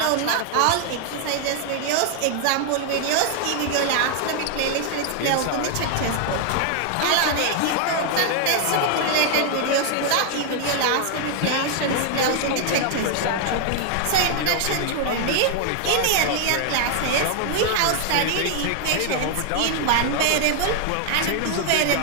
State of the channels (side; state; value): both; different; correlation 0.00